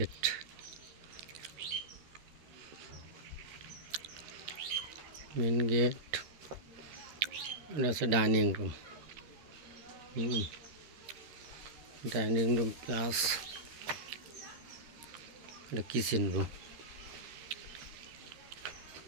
main gate. এটা হচ্ছে dining room. Dining room plus এটা কিচেন রুম।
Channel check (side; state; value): left; late; 13 ms